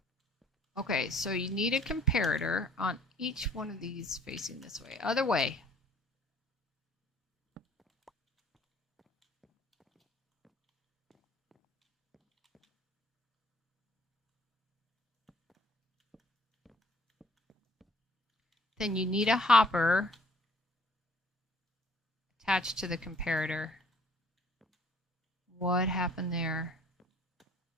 Okay, so you need a comparator on each one of these facing this way. Other way. Then you need a hopper attached to the comparator. What happened there?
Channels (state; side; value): normal; both; correlation 0.57